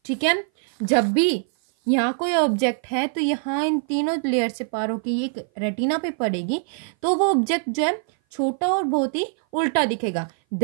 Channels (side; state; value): left; silent; 58 dB below the other